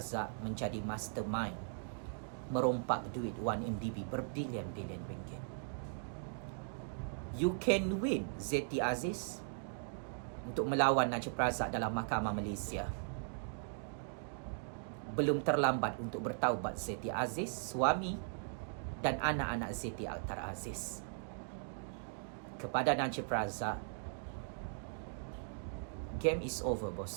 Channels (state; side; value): silent; left; digital silence